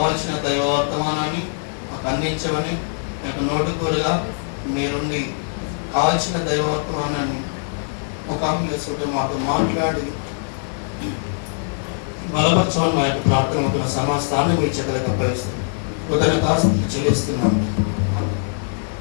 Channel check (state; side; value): silent; right; digital silence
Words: దైవ వర్తమానాన్ని మాకు అందించమని మీకు నోటుకోలుగా మీరుండి కావాల్సిన దైవ వర్తమానాన్ని ముఖాముఖి మాతో మాట్లాడి బలపరచమని మా యొక్క ప్రార్థన సమస్తాన్ని మీ చేతులకు అప్పగిస్తుంది. కృతజ్ఞతాస్తుతులు చెల్లిస్తున్నాను.